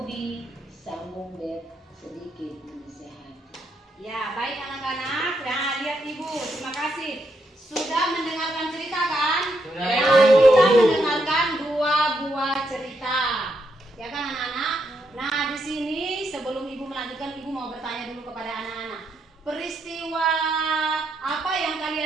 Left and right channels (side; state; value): both; normal; correlation 0.79